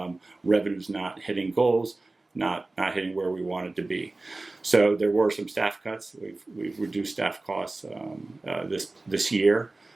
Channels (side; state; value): left; quieter; 3.1 dB